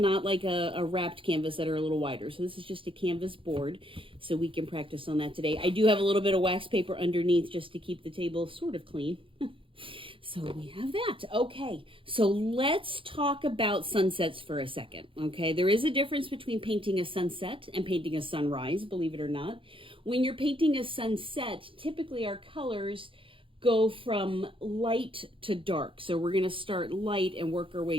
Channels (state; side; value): late; left; 0.25 ms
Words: like a wrapped canvas that are a little wider. So this is just a canvas board, so we can practice on that today. I do have a little bit of wax paper underneath just to keep the table sort of clean. So we have that. Okay, so let's talk about sunsets for a second, okay? There is a difference between painting a sunset and painting a sunrise, believe it or not. When you're painting a sunset, typically our colors go from light to dark. So we're gonna start light and work our